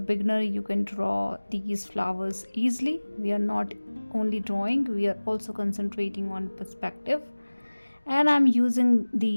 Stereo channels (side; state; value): both; inverted; correlation -1.00